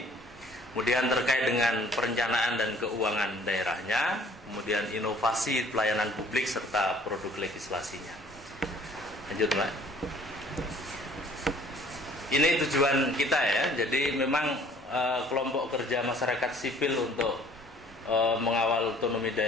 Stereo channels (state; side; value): normal; both; correlation 0.55